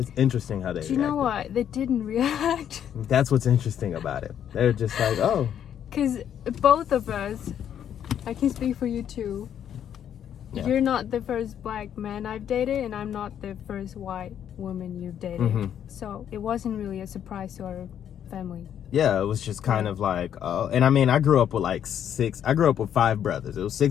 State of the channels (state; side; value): quieter; right; 9.5 dB